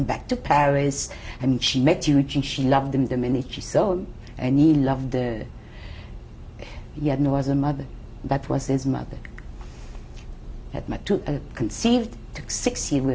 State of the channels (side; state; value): both; identical; correlation 1.00